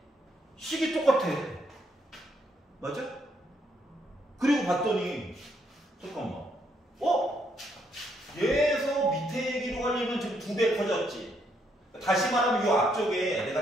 식이 똑같아. 맞아? 그리고 봤더니 잠깐만. 얘에서 밑에 얘기로 하려면 지금 2배 커졌지. 다시 말하면 이 앞쪽에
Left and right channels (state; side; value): normal; both; correlation 0.73